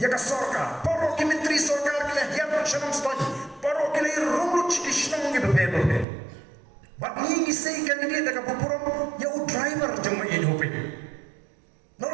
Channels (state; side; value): drops out; left; at 6.1 s